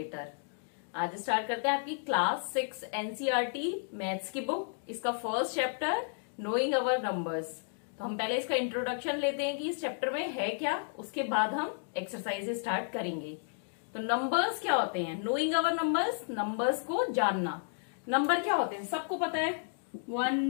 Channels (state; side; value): silent; right; digital silence